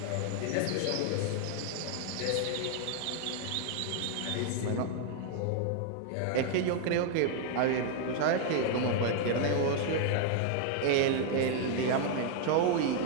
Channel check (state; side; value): different; both; correlation 0.00